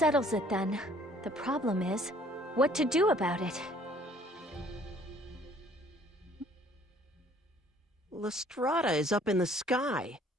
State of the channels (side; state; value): both; normal; correlation 0.57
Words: it then. The problem is, what to do about it? Lestrada is up in the sky.